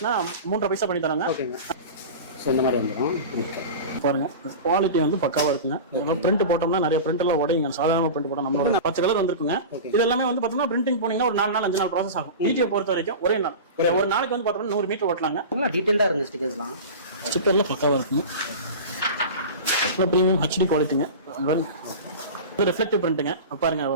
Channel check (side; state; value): both; inverted; correlation -0.30